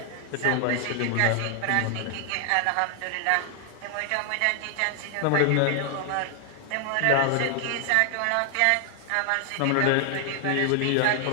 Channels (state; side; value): different; both; correlation 0.00